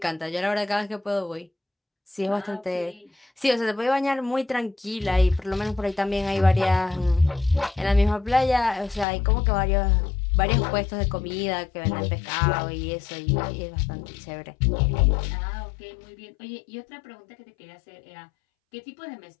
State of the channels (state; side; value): drops out; right; at 9.1 s